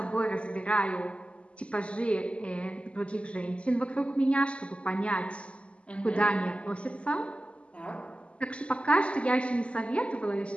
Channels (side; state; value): right; late; 0.057 ms